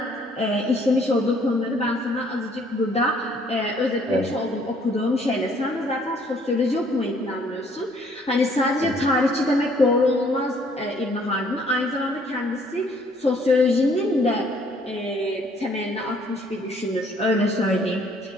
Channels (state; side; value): normal; both; correlation 0.62